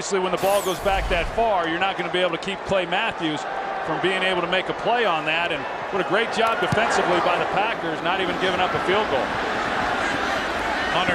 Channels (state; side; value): identical; both; correlation 1.00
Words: when the ball goes back that far, you're not going to be able to keep Clay Matthews from being able to make a play on that. And what a great job defensively by the Packers, not even giving up a field goal.